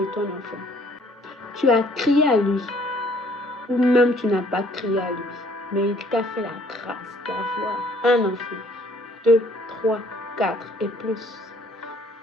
ton enfant. Tu as crié à lui, ou même tu n'as pas crié à lui, mais il t'a fait la grâce d'avoir un enfant, 2, 3, 4 et plus.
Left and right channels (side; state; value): both; normal; correlation 0.60